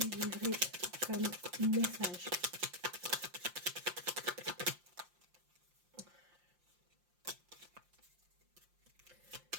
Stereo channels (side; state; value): left; late; 5.7 ms